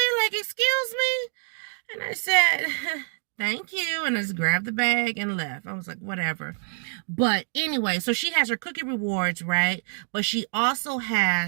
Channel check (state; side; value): silent; left; 57 dB below the other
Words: like, excuse me? And I said, thank you. And I just grabbed the bag and left. I was like, whatever. But anyway, so she has her cookie rewards, right? But she also